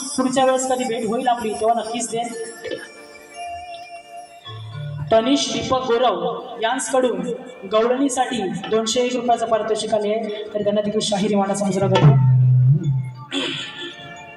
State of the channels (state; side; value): identical; both; correlation 1.00